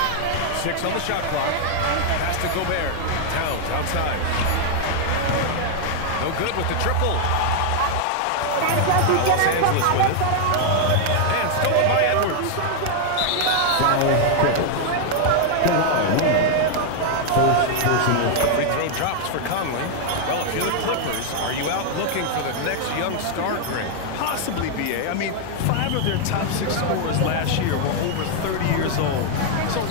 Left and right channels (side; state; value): both; different; correlation 0.00